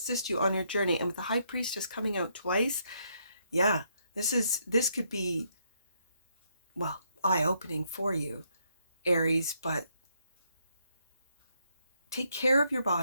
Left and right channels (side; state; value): both; inverted; correlation -0.74